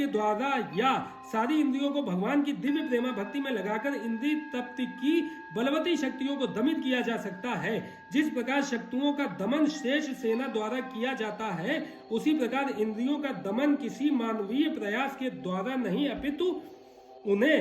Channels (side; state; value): both; identical; correlation 1.00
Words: द्वारा या सारी इंद्रियों को भगवान की दिव्य प्रेमा भक्ति में लगाकर इंद्रिय तप्त की बलवती शक्तियों को दमित किया जा सकता है। जिस प्रकार शक्तियों का दमन श्रेष्ठ सेना द्वारा किया जाता है, उसी प्रकार इंद्रियों का दमन किसी मानवीय प्रयास के द्वारा नहीं अपितु